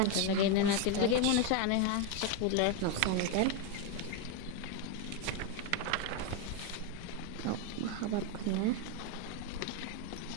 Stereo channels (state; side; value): different; both; correlation 0.02